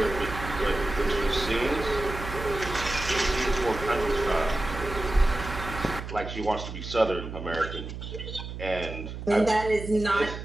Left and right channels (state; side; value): noise; right; hum, 8 dB below the sound